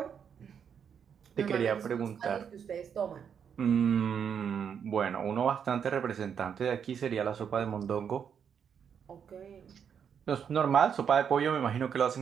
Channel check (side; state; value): left; quieter; 7.6 dB